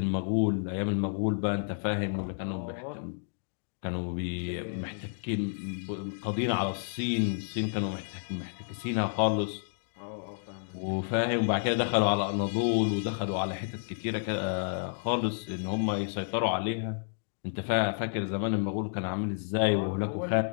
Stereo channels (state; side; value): silent; right; digital silence